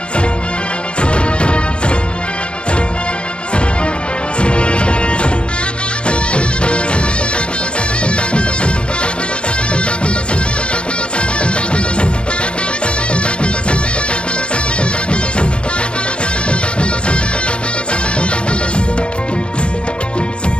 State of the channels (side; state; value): right; late; 0.056 ms